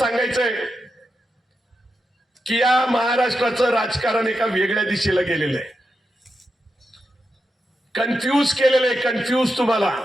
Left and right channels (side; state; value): both; normal; correlation 0.87